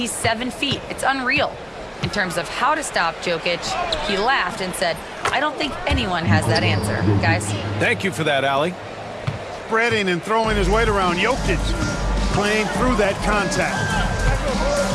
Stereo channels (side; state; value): both; identical; correlation 1.00